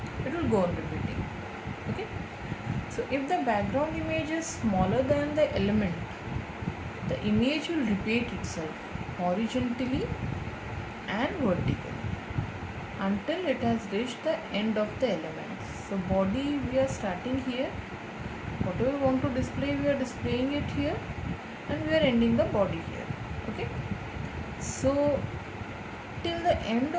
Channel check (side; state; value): both; identical; correlation 1.00